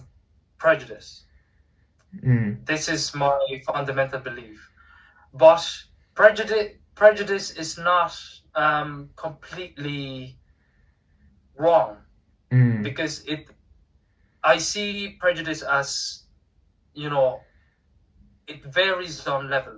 prejudice. This is my fundamental belief. But prejudice is not completely wrong, because I see prejudice as, it varies on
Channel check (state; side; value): identical; both; correlation 1.00